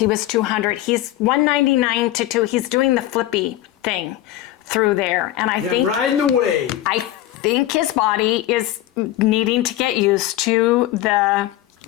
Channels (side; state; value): right; quieter; 14.3 dB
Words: was 200. He's 199 to 2. He's doing the flippy thing through there, and I think riding the wave. I think his body is needing to get used to the